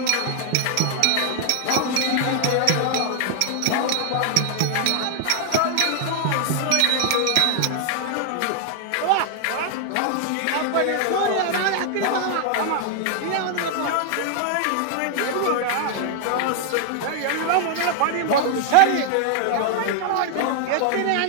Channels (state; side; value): different; both; correlation 0.00